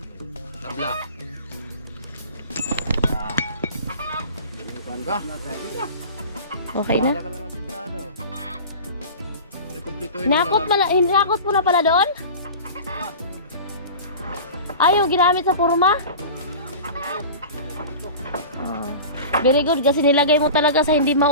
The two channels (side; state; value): both; inverted; correlation -0.35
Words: Tabla. Ba? Okay na? Wala ka na nasintado. Rekomplituhin Hinakot mo na pala doon? Ay, yung ginamit sa purma? Oh. Very good kasi nilagay mo talaga sa hindi